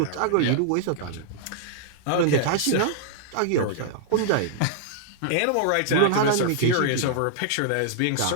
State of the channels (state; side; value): different; both; correlation -0.01